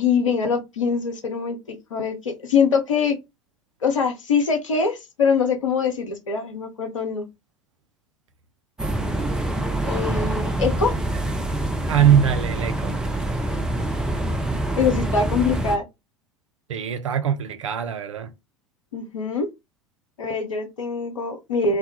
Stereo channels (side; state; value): both; normal; correlation 0.41